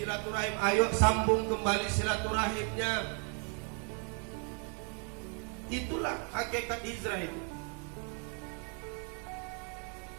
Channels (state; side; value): quieter; left; 38.8 dB